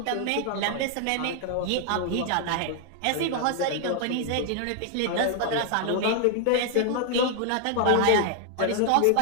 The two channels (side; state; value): both; different; correlation 0.00